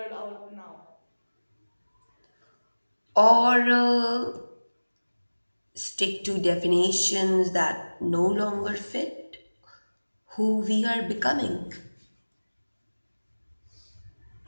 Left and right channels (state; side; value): inverted; both; correlation -1.00